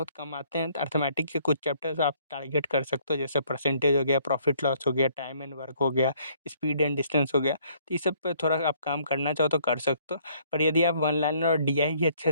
कम आते हैं, तो अर्थमेटिक के कुछ चैप्टर्स आप टारगेट कर सकते हो, जैसे परसेंटेज हो गया, प्रॉफिट लॉस हो गया, टाइम एंड वर्क हो गया, स्पीड एंड डिस्टेंस हो गया। तो ये सब पे थोड़ा आप काम करना चाहो तो कर सकते हो। पर यदि आप वन लाइनर और डीआई ही अच्छे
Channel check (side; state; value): both; inverted; correlation -0.63